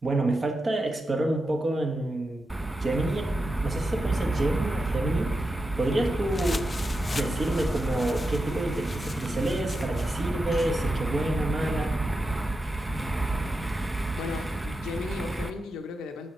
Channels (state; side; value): normal; both; correlation 0.89